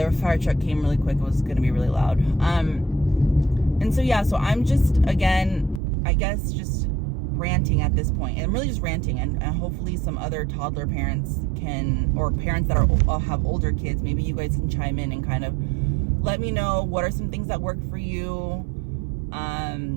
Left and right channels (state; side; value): drops out; left; at 5.8 s